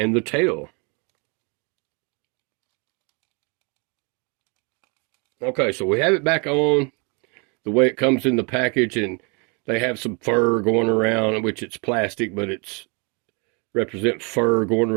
the tail. Okay, so we have it back on the way it comes in the package, and they have some fur going around, which it's plastic, but it's represent fur going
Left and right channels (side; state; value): left; quieter; 33.2 dB